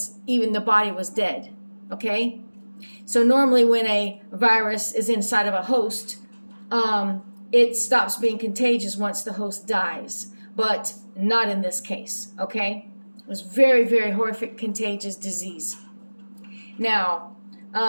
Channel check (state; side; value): inverted; both; correlation -1.00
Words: even the body was dead. Okay? So normally when a virus is inside of a host, it stops being contagious once the host dies, but not in this case, okay? It was very, very horrific, contagious disease. Now,